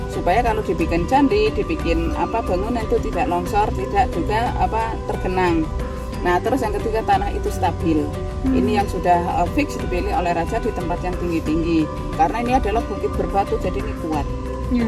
supaya kalau dibikin candi, dibikin bangunan itu tidak longsor, tidak juga tergenang. Nah, terus yang ketiga, tanah itu stabil. Ini yang sudah fix dipilih oleh raja di tempat yang tinggi-tinggi. Karena ini adalah bukit berbatu, jadi ini kuat.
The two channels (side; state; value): both; identical; correlation 1.00